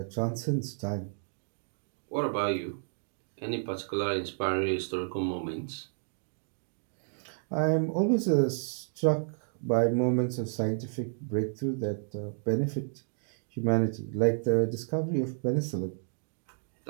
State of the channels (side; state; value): left; silent; digital silence